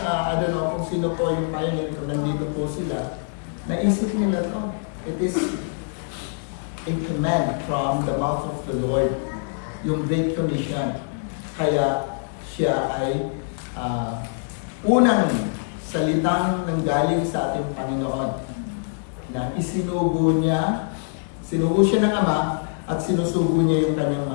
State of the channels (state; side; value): silent; right; digital silence